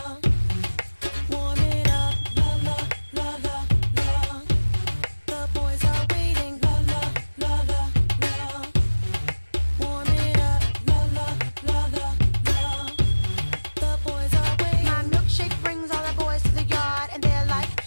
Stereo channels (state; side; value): inverted; both; correlation -1.00